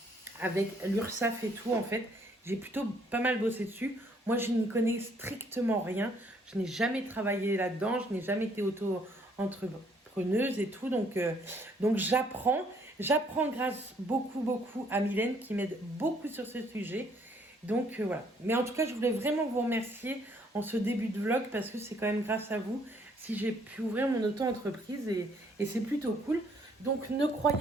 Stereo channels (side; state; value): both; normal; correlation 0.65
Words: avec l'URSSAF et tout, en fait. J'ai plutôt pas mal bossé dessus. Moi, je n'y connais strictement rien. Je n'ai jamais travaillé là-dedans. Je n'ai jamais été auto-entrepreneuse et tout. Donc j'apprends. J'apprends grâce beaucoup à Mylène qui m'aide beaucoup sur ce sujet. Donc voilà. Mais en tout cas, je voulais vraiment vous remercier en ce début de vlog parce que c'est quand même grâce à vous si j'ai pu ouvrir mon auto-entreprise et c'est plutôt cool. Donc ne